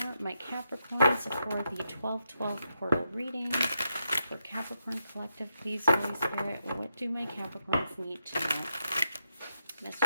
my Capricorns for the 12/12 portal reading? For Capricorn Collective, please, Holy Spirit, what do my Capricorns need to know?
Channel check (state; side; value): inverted; both; correlation -0.82